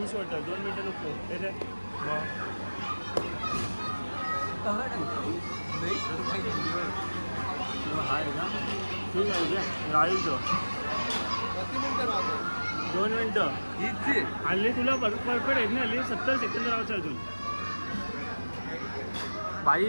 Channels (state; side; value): inverted; both; correlation -1.00